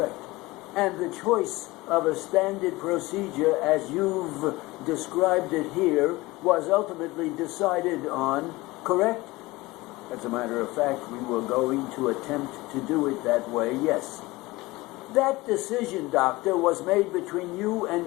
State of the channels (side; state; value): right; quieter; 20.7 dB